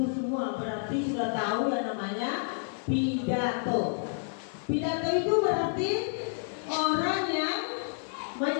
semua berarti sudah tahu yang namanya pidato. Pidato itu berarti orang yang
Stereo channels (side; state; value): right; silent; 58 dB below the other